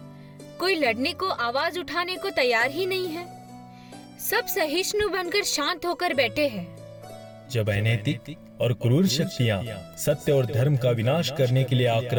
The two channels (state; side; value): identical; both; correlation 1.00